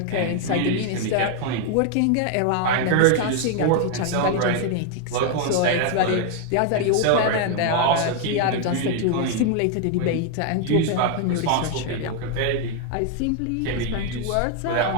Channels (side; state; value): both; different; correlation 0.00